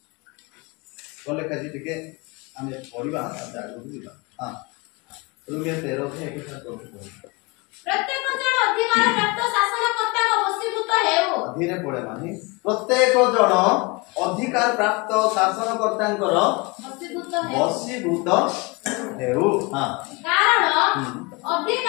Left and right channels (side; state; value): right; quieter; 26.7 dB